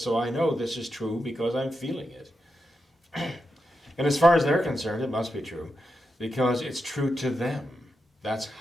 I know this is true because I'm feeling it. And as far as they're concerned, it must be true because it's true to them. That's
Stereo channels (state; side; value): normal; both; correlation 0.87